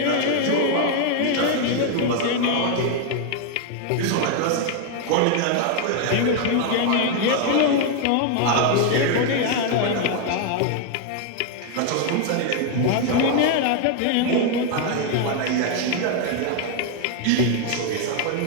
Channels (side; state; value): both; different; correlation 0.01